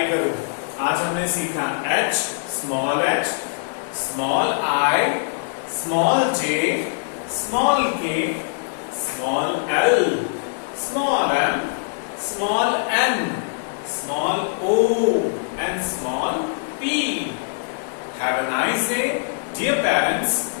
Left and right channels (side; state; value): right; silent; 64 dB below the other